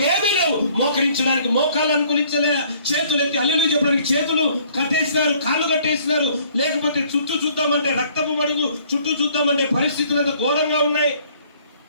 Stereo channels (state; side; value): inverted; both; correlation -0.59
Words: లేవు. మోకరించడానికి మోకాళ్ళు అనుకూలించలే, చేతులు ఎత్తి హల్లెలూయా చెప్పడానికి చేతులు కట్టేసినారు, కాళ్ళు కట్టేసినారు. లేకపోతే చుట్టూ చూద్దామంటే రక్తపు మడుగు, చుట్టూ చూద్దామంటే పరిస్థితులు అంత ఘోరంగా ఉన్నాయి.